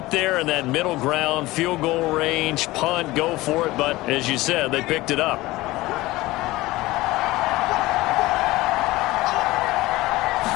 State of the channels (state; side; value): quieter; right; 19.1 dB